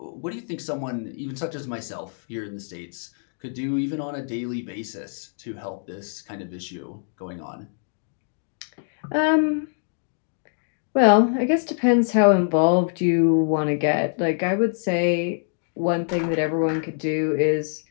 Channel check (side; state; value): right; silent; digital silence